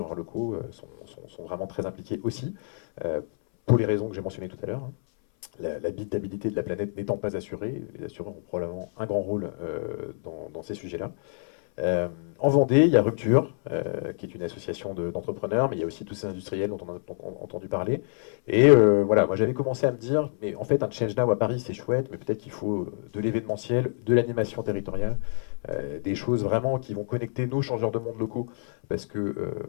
locaux sont vraiment très impliqués aussi, pour les raisons que j'ai mentionnées tout à l'heure. L'habitabilité de la planète n'étant pas assurée, les assureurs ont probablement un grand rôle dans ces sujets-là. En Vendée, il y a Rupture, qui est une association d'entrepreneurs, mais il y a aussi tous ces industriels dont on a entendu parler. Et voilà, moi j'avais commencé à me dire, mais en fait un Change Now à Paris c'est chouette, mais peut-être qu'il faut de l'événementiel, de l'animation territoriale, des choses vraiment qui vont connecter nos changeurs de monde locaux. Parce que,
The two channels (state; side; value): silent; right; 60 dB below the other